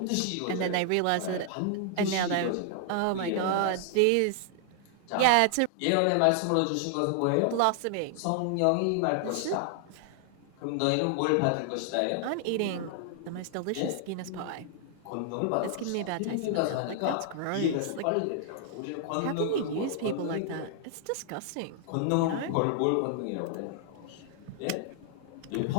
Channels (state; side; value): different; both; correlation 0.00